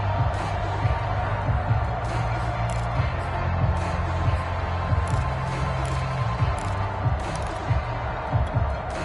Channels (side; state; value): both; identical; correlation 1.00